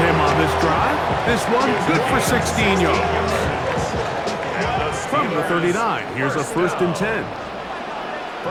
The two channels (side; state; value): both; identical; correlation 1.00